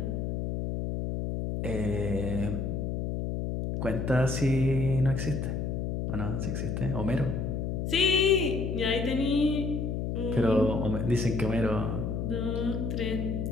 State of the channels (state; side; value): noise; left; hum, 2 dB below the sound